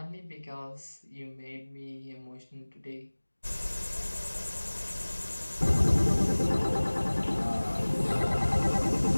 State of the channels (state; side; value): inverted; both; correlation -1.00